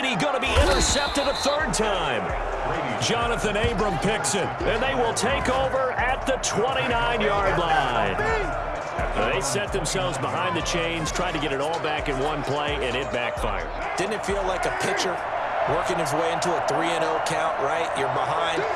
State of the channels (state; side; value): identical; both; correlation 1.00